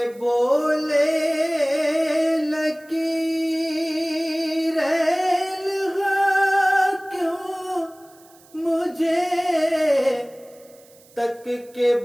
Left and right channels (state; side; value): noise; right; hiss, 27 dB below the sound